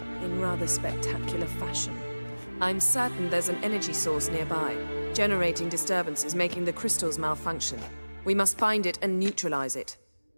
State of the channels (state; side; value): inverted; both; correlation -1.00